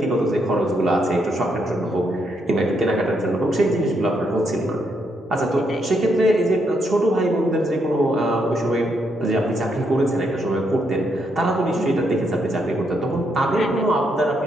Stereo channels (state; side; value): normal; both; correlation 0.77